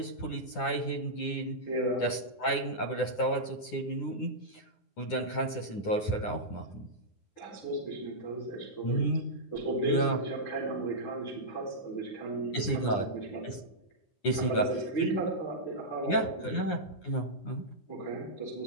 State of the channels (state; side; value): late; right; 9.8 ms